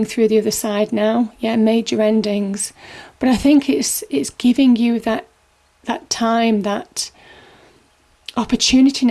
through the other side now. Yeah, major endings. But I think it's giving you that time, that opportunity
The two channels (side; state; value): both; identical; correlation 1.00